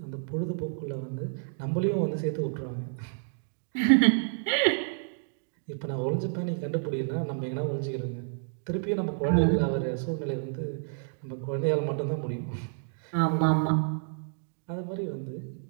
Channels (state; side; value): silent; left; digital silence